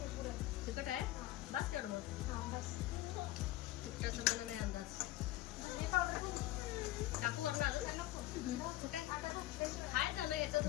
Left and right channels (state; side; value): quieter; right; 15.9 dB